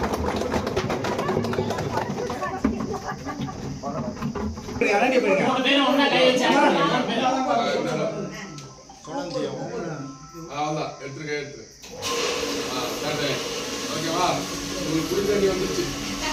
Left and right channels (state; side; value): identical; both; correlation 1.00